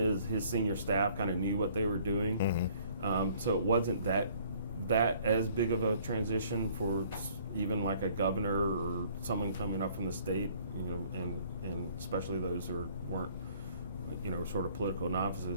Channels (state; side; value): inverted; both; correlation -0.58